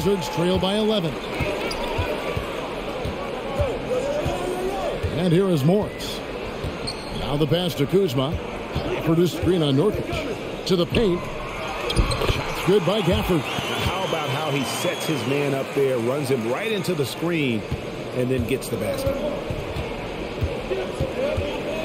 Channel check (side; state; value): both; identical; correlation 1.00